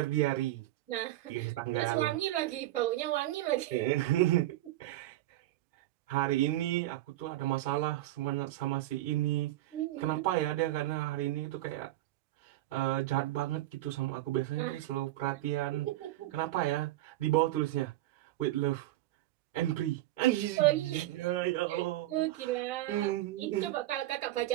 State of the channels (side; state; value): left; quieter; 15.7 dB